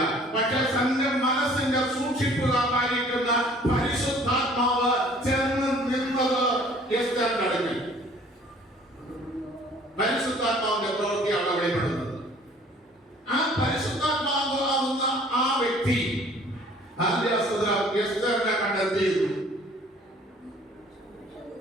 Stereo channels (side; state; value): both; normal; correlation 0.54